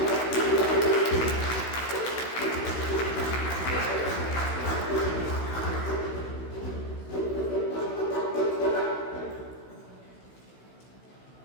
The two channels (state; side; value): late; right; 16 ms